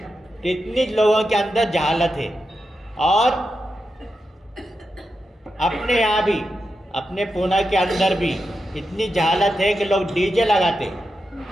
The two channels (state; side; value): normal; both; correlation 0.88